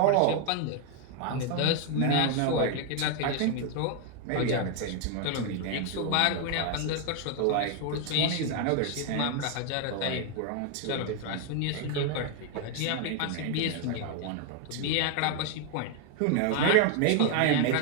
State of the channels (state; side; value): different; both; correlation 0.00